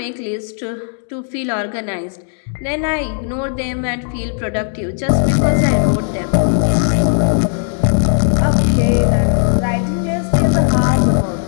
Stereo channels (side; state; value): right; silent; 69 dB below the other